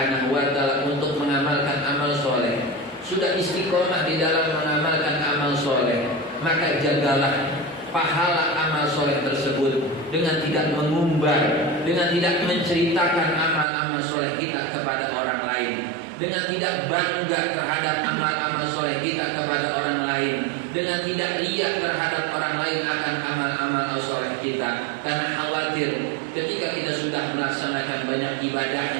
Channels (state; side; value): drops out; left; at 13.7 s